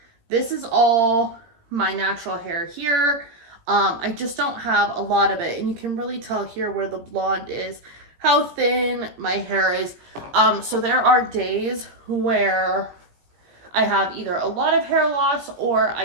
This is all my natural hair here. I just don't have a lot of it, and you can really tell here where the blonde is, how thin my hair is. So there are days where I have either a lot of hair loss or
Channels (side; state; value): left; late; 18 ms